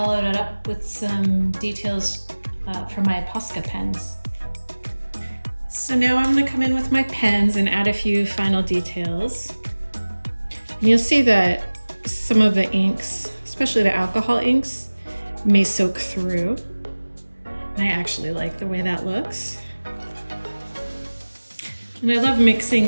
it up with some details from my Posca pens. So now I'm going to come in with my pens and add a few final details. And you'll see that some of the inks, especially the alcohol inks, may soak through. And I actually like the way that looks. And I love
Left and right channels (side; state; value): both; inverted; correlation -1.00